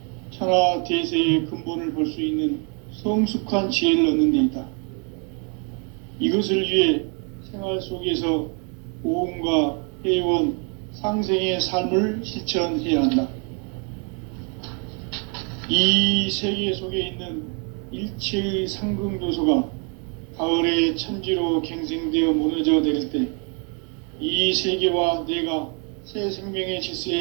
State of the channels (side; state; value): left; quieter; 37.6 dB